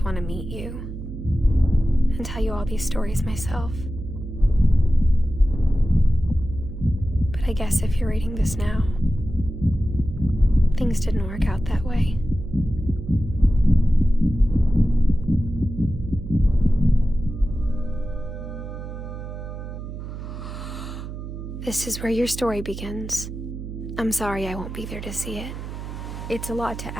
want to meet you and tell you all these stories myself. But I guess if you're reading this now, things didn't work out that way. This is where your story begins. I'm sorry I won't be there to see it. It's a lot to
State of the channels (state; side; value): noise; right; hum, 9 dB below the sound